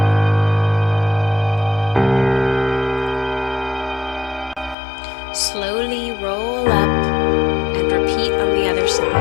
Slowly roll up and repeat on the other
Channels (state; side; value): drops out; right; at 4.8 s